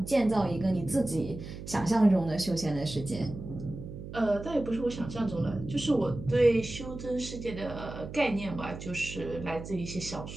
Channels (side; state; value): right; noise; hum, 11 dB below the sound